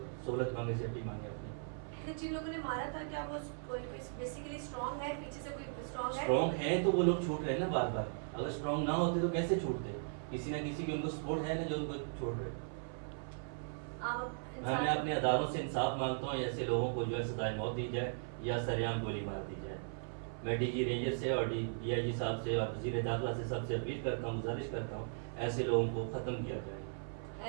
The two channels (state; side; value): silent; left; 53 dB below the other